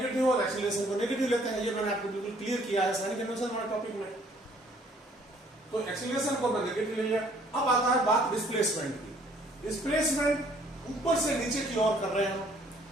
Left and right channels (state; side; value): normal; both; correlation 0.61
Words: और एक्सीलरेशन को नेगेटिव लेते हैं, ये मैंने आपको बिल्कुल क्लियर किया है साइन कन्वेंशन वाले टॉपिक में। तो एक्सीलरेशन को मैं नेगेटिव ले लिया। अब आता है बात डिस्प्लेसमेंट की, डिस्प्लेसमेंट ऊपर से नीचे की ओर कर रहे हैं।